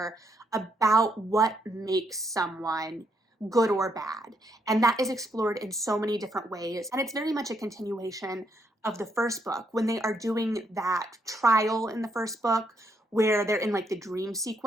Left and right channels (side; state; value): both; normal; correlation 0.75